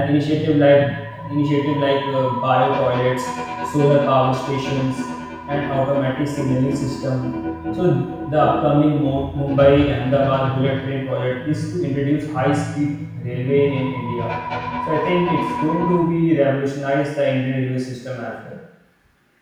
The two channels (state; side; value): identical; both; correlation 1.00